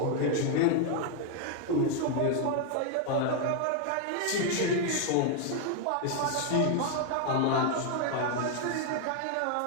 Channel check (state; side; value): different; both; correlation 0.00